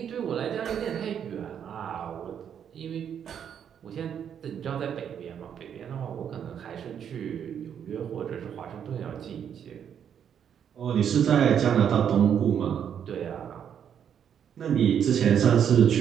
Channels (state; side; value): quieter; left; 8.5 dB